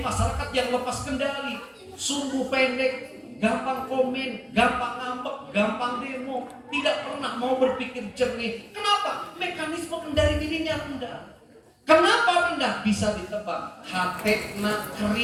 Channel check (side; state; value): both; identical; correlation 1.00